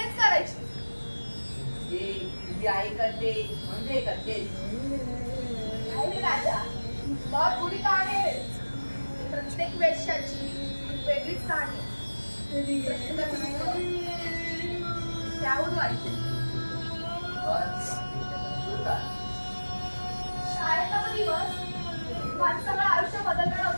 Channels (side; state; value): both; inverted; correlation -1.00